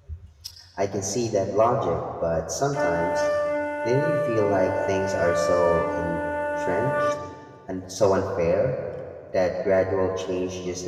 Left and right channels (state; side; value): identical; both; correlation 1.00